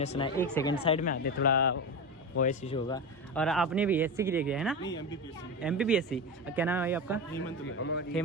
सुना है। 1 सेकंड साइड में आते, थोड़ा वॉइस इशू होगा। और आपने भी एससी क्लियर किया है ना? एमपीपीएससी। क्या नाम है भाई आपका?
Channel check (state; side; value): normal; both; correlation 0.20